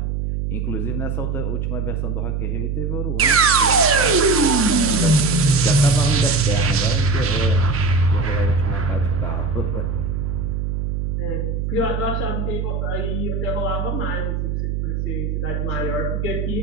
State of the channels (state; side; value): noise; right; hum, 1 dB below the sound